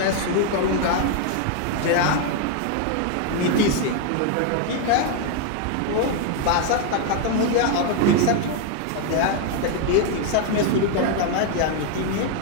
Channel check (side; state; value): both; different; correlation 0.00